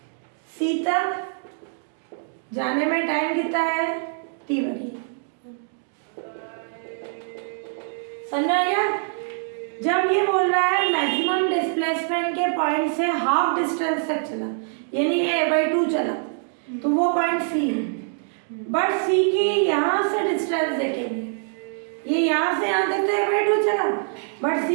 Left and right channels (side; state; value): left; silent; digital silence